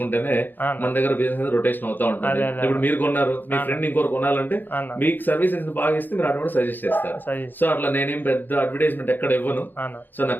మన దగ్గర బిజినెస్ రొటేషన్ అవుతా ఉంటుంది. ఇప్పుడు మీరు కొన్నారు, మీ ఫ్రెండ్ ఇంకోరు కొనాలంటే మీకు సర్వీసెస్ బాగా ఇస్తే మీరు అటు సజెస్ట్ చేస్తారు. సో అట్లా నేనేం పెద్ద అడ్వర్టైజ్మెంట్ ఎక్కడ ఇవ్వను. సో నా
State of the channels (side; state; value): right; late; 0.090 ms